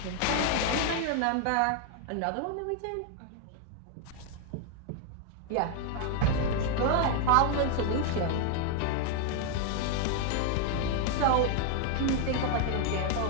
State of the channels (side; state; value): both; different; correlation 0.00